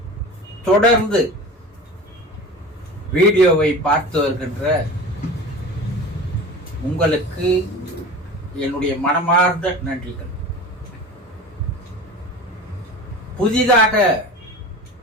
தொடர்ந்து வீடியோவை பார்த்து வருகின்ற உங்களுக்கு என்னுடைய மனமார்ந்த நன்றிகள். புதிதாக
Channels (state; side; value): normal; both; correlation 0.35